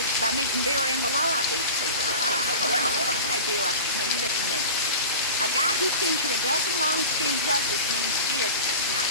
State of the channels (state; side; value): inverted; both; correlation -0.33